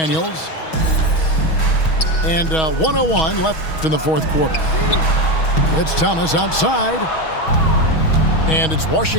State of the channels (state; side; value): late; right; 6.3 ms